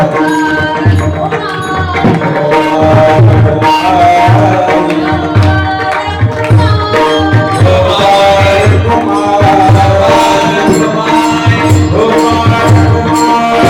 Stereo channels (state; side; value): identical; both; correlation 1.00